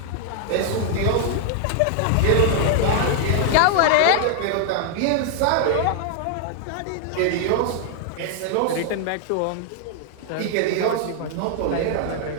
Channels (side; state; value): both; different; correlation 0.00